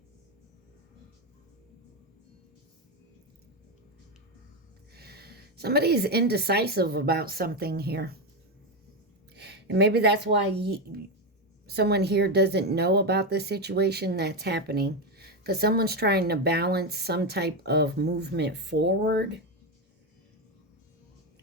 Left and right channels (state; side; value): normal; both; correlation 0.11